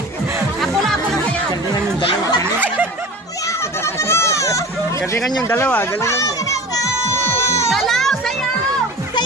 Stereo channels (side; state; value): both; normal; correlation 0.37